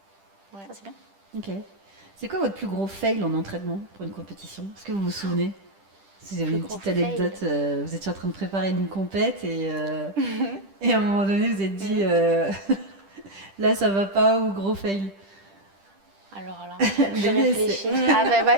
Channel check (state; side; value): late; left; 10 ms